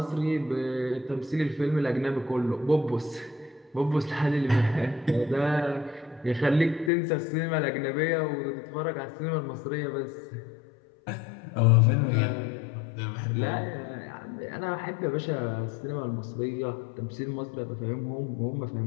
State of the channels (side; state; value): right; drops out; at 6.9 s